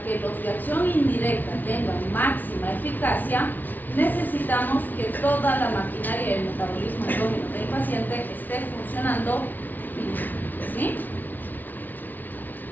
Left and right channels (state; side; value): late; right; 0.084 ms